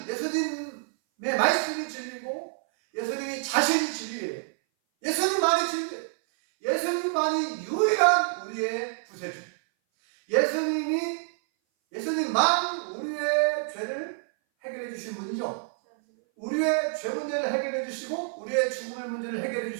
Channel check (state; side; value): silent; left; 58 dB below the other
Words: 예수님의 말씀이 진리고 예수님이 자신이 진리예요. 예수님만이 진리예요. 예수님만이 유일한 우리의 구세주. 예수님만 우리의 죄를 해결해 주신 분이죠. 우리의 죄 문제를 해결해 주시고 우리의 죽음의 문제를 해결해